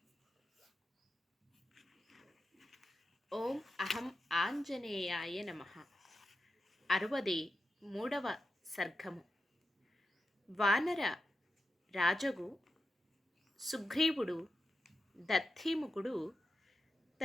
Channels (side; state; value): both; normal; correlation 0.90